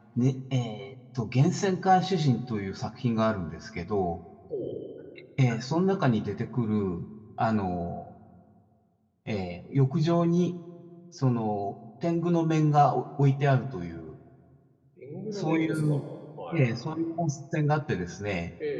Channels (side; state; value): both; identical; correlation 1.00